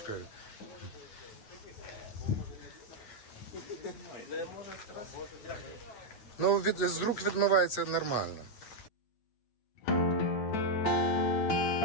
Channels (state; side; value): late; right; 8.9 ms